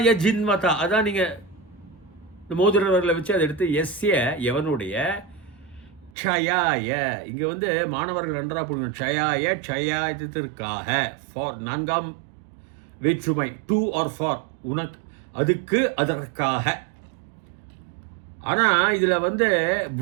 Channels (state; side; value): drops out; left; at 6.1 s